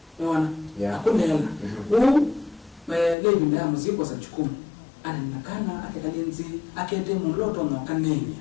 unaona akolela lebi nda muziko sa chukumu ana nakana akekalinzi akende muloto no kanenya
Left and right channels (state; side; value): drops out; right; at 3.2 s